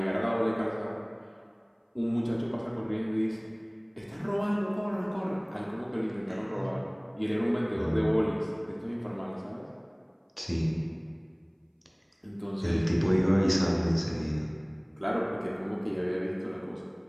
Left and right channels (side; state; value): both; identical; correlation 1.00